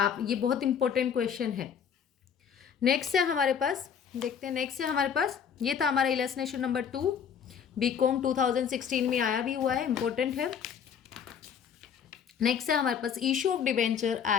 ये बहुत इंपॉर्टेंट क्वेश्चन है। नेक्स्ट है हमारे पास, देखते हैं नेक्स्ट है हमारे पास, ये था हमारा इलस्ट्रेशन नंबर 2, बीकॉम 2016 में आया भी हुआ है, इंपॉर्टेंट है। नेक्स्ट है हमारे पास issue of debenture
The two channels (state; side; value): quieter; right; 7.6 dB